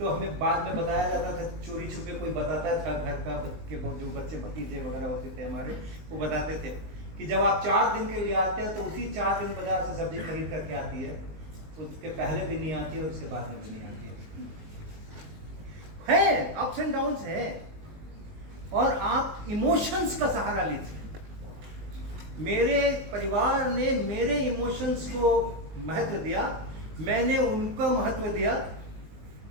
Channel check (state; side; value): late; left; 19 ms